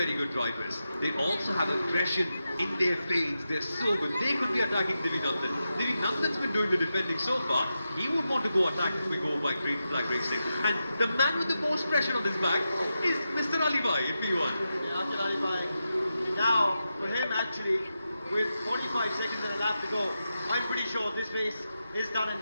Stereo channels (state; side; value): inverted; both; correlation -0.89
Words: good drivers. They also have aggression in their fades. They're so good. They could be attacking Divy Nandan. Divy Nandan's been doing the defending so far. He would want to go attack if we go by green flag racing. And the man with the most pressure on his back is Mr. Alibhai in P1. Yeah, Aqil Alibhai. Now, for him actually, with 45 seconds and a lap to go, I'm pretty sure this race is done and